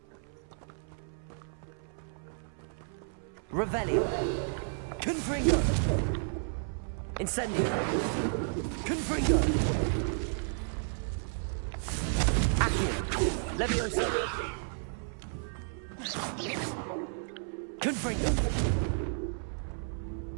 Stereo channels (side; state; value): left; silent; 56 dB below the other